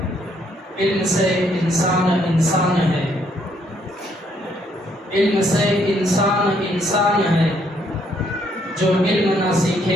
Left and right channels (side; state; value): both; normal; correlation 0.70